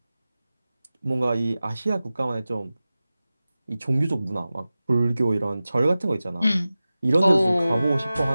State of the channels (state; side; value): inverted; both; correlation -0.96